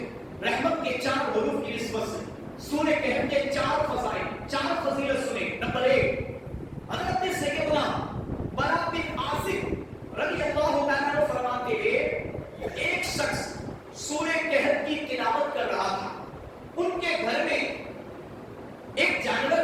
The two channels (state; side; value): identical; both; correlation 1.00